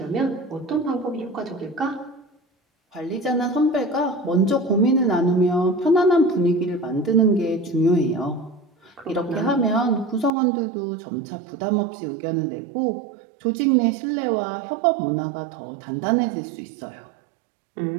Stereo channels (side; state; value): left; drops out; at 10.3 s